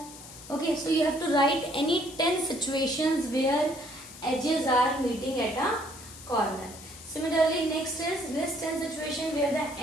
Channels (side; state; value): left; noise; hiss, 16 dB below the sound